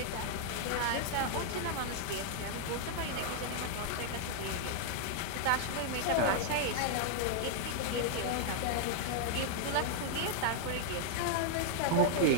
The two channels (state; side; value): different; both; correlation -0.01